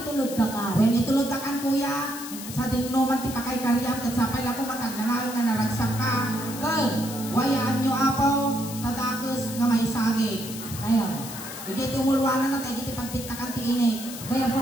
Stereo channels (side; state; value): left; noise; hiss, 11 dB below the sound